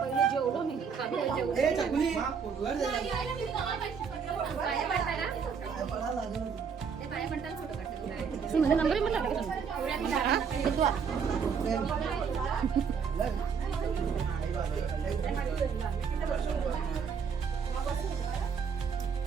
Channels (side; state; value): left; quieter; 6.4 dB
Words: पहिले जेवलो मी खाली जेवू. ए, चकुली. पाया पडताय ना? ते पाया पडताना फोटो काढते तुला. माझा नंबर मला टाका.